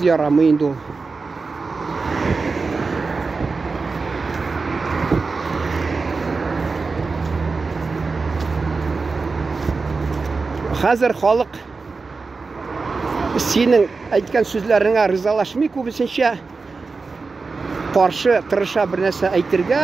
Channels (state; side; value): quieter; left; 4.3 dB